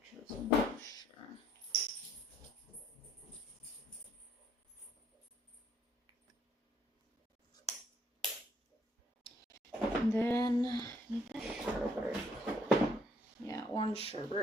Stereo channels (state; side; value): normal; both; correlation 0.66